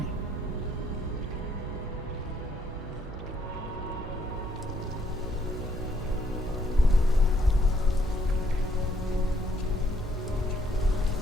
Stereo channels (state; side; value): normal; both; correlation 0.70